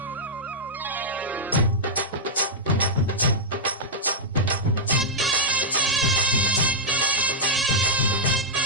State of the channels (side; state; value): both; normal; correlation -0.09